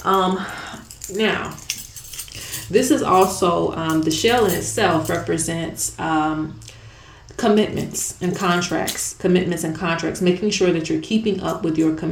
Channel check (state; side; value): identical; both; correlation 1.00